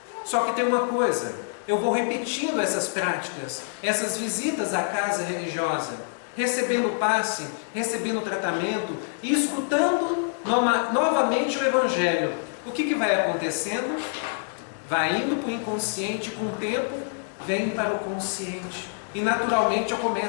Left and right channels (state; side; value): silent; right; digital silence